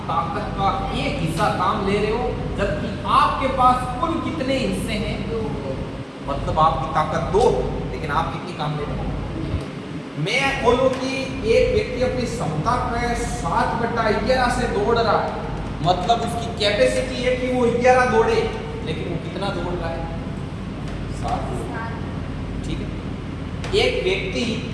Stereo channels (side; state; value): both; identical; correlation 1.00